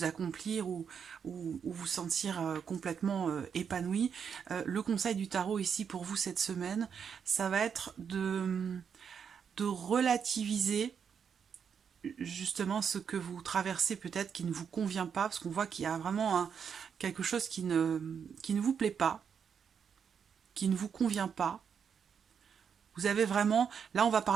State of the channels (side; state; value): left; quieter; 7.1 dB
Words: accomplir ou vous sentir complètement épanoui. Le conseil du tarot ici pour vous cette semaine, ça va être de relativiser justement ce que vous traversez peut-être qui ne vous convient pas, parce qu'on voit qu'il y a vraiment quelque chose qui ne vous plaît pas, qui ne vous convient pas. Vous avez vraiment... Là, on va